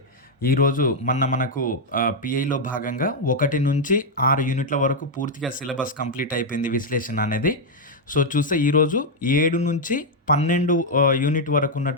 ఈరోజు మనకు పిఐలో భాగంగా 1-6 యూనిట్ల వరకు పూర్తిగా సిలబస్ కంప్లీట్ అయిపోయింది విశ్లేషణ అనేది. సో, చూస్తే ఈరోజు 7-12 యూనిట్ వరకు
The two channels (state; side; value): normal; both; correlation -0.01